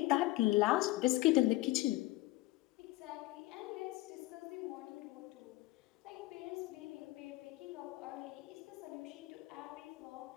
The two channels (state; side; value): quieter; right; 18.9 dB